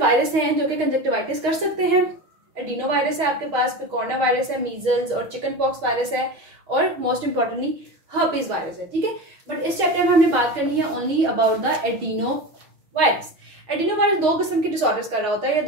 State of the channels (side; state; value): left; late; 6.4 ms